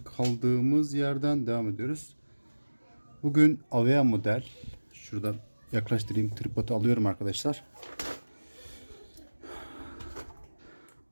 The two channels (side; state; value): both; inverted; correlation -1.00